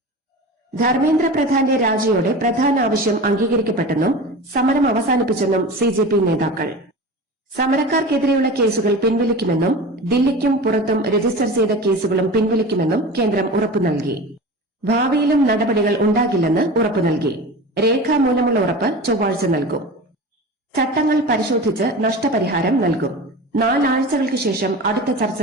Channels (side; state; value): both; normal; correlation 0.32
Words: ധർമ്മേന്ദ്ര പ്രധാന്റെ രാജിയോടെ പ്രധാന ആവശ്യം അംഗീകരിക്കപ്പെട്ടെന്നും സമരം അവസാനിപ്പിച്ചെന്നും CJP നേതാക്കൾ. സമരക്കാർക്കെതിരെയുള്ള കേസുകൾ പിൻവലിക്കുമെന്നും ദില്ലിക്കും പുറത്തും രജിസ്റ്റർ ചെയ്ത കേസുകളും പിൻവലിക്കുമെന്നും കേന്ദ്രം ഉറപ്പു നൽകി. ഭാവിയിലും നടപടികൾ ഉണ്ടാകില്ലെന്ന് ഉറപ്പു നൽകി. രേഖാമൂലമുള്ള ഉറപ്പ് ചൊവ്വാഴ്ച നൽകും. ചട്ടങ്ങൾ പരിശോധിച്ച് നഷ്ടപരിഹാരം നൽകും. 4 ആഴ്ചകൾക്ക് ശേഷം അടുത്ത ചർച്ച